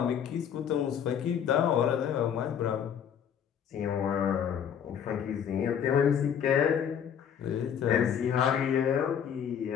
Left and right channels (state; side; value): quieter; right; 8.5 dB